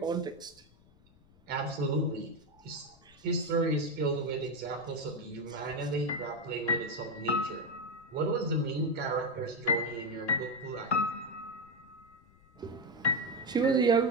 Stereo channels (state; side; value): noise; left; rumble, 27 dB below the sound